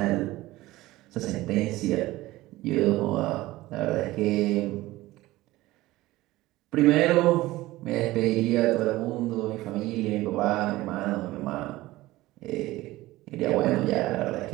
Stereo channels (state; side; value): quieter; left; 17.9 dB